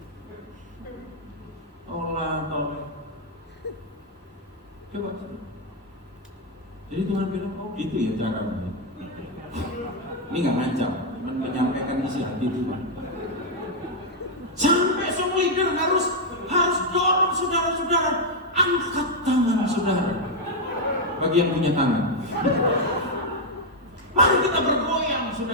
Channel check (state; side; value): normal; both; correlation 0.00